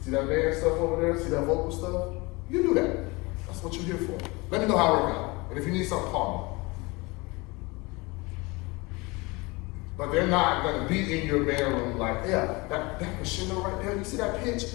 see that band stuff over there? See that vocal stuff? You do that. That's what you're here for. Let me know how it works out. And if you need something, call me. But they're not going to be in your band room like, yeah, that crescendo right there, you see that pitch?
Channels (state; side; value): quieter; right; 25.1 dB